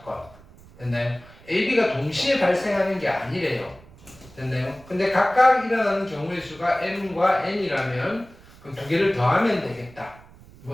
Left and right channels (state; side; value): noise; right; rumble, 23 dB below the sound